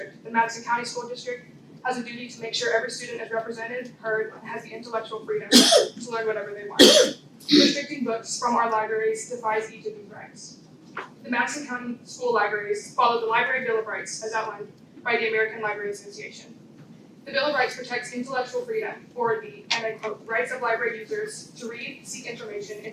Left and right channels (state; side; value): identical; both; correlation 1.00